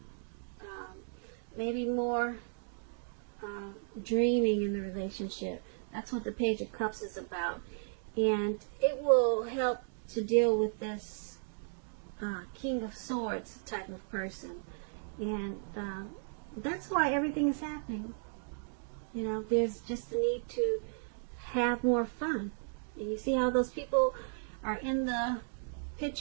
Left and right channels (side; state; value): left; silent; digital silence